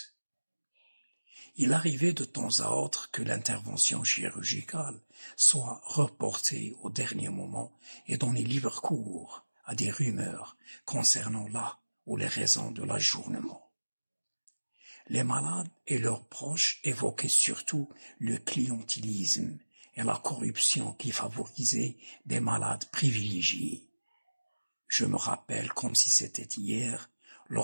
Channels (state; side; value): inverted; both; correlation -1.00